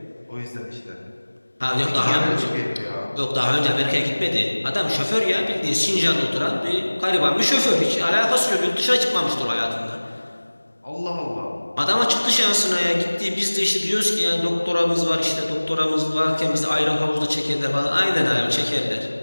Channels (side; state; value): both; inverted; correlation -1.00